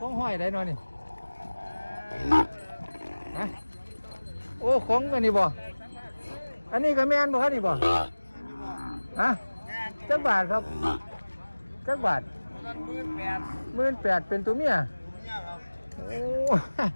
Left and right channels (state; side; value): inverted; both; correlation -1.00